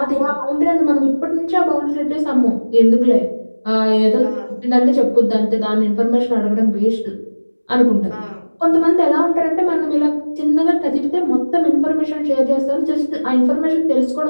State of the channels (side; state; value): both; inverted; correlation -1.00